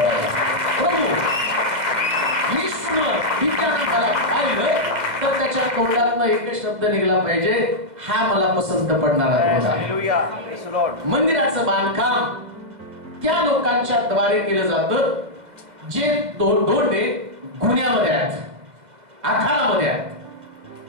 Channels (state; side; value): late; left; 2.1 ms